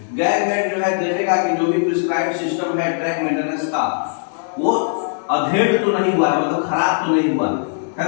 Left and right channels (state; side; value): silent; right; 60 dB below the other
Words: गैंगमेट जो है देखेगा कि जो भी प्रिस्क्राइब्ड सिस्टम है ट्रैक मेंटेनेंस का वो अधेड़ तो नहीं हुआ है, मतलब खराब तो नहीं हुआ है